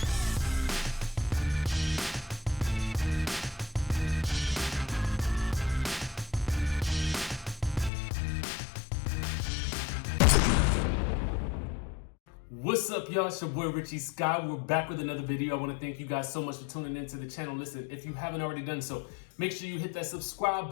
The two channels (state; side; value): drops out; right; at 7.9 s